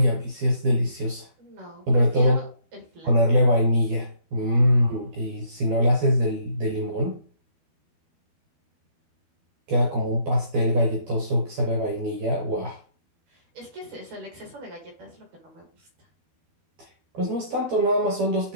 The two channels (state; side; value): late; left; 12 ms